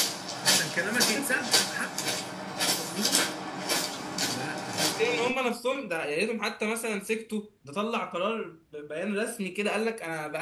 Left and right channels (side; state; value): both; identical; correlation 1.00